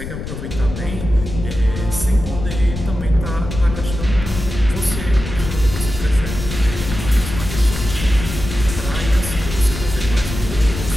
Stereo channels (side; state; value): left; noise; rumble, 7 dB below the sound